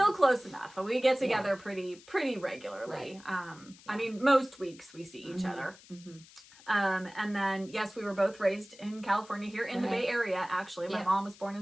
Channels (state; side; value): noise; left; hiss, 22 dB below the sound